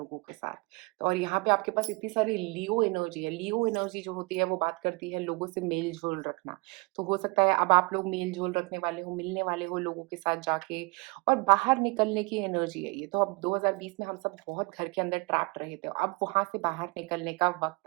के साथ। तो और यहाँ पे आपके पास इतनी सारी लियो एनर्जी है। लियो एनर्जी जो होती है वो बात करती है लोगों से मेल-जोल रखना। तो हो सकता है अब आप लोग मेल-जोल रखने वाले हो, मिलने वाले हो लोगों के साथ जाके, और बाहर निकलने की एनर्जी है ये। तो अब 2020 में हम सब बहुत घर के अंदर ट्रैप्ड रहे थे। अब वहाँ से बाहर निकलने का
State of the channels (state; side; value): quieter; left; 26.9 dB